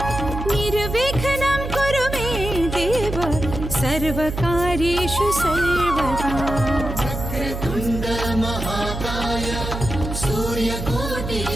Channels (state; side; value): noise; right; hum, 6 dB below the sound